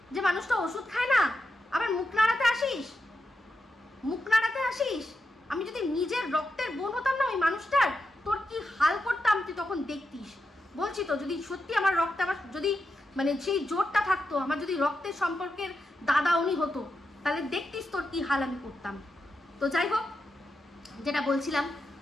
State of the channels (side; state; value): both; normal; correlation 0.87